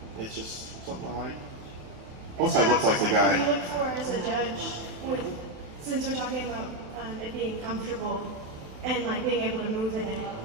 it's just something I like. Plus, I look like the guy. What do you look for as a judge since we're talking about it being comfortable and like being able to move in it?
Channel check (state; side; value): late; left; 27 ms